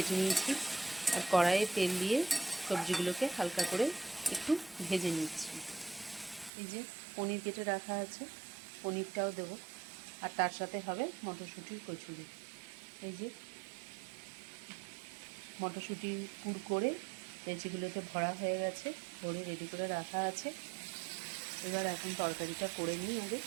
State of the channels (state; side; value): drops out; left; at 6.5 s